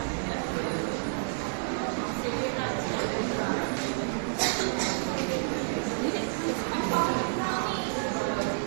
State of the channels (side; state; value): left; silent; digital silence